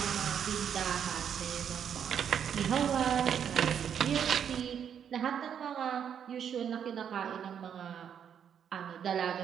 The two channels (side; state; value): left; quieter; 8.3 dB